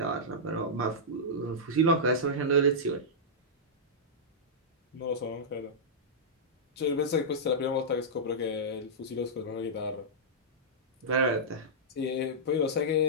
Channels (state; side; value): normal; both; correlation -0.12